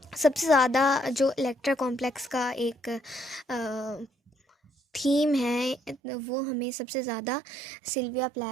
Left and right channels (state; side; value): drops out; left; at 6.0 s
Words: सबसे ज़्यादा जो इलेक्ट्रा कॉम्प्लेक्स का एक थीम है वो हमें सबसे ज़्यादा सिल्विया